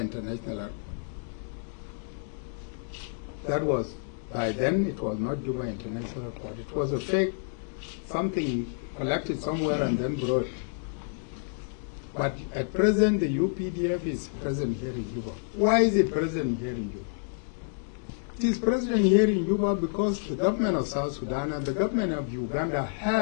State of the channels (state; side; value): silent; right; digital silence